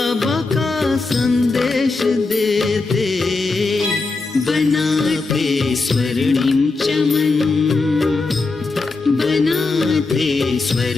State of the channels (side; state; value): right; quieter; 3.7 dB